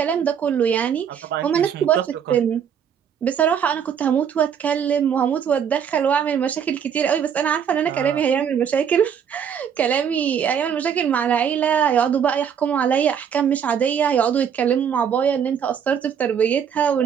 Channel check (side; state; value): left; quieter; 7.9 dB